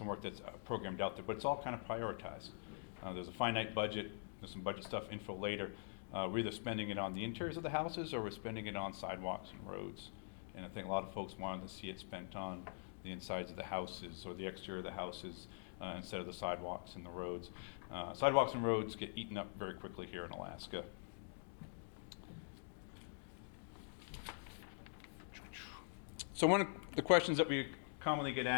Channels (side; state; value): right; silent; digital silence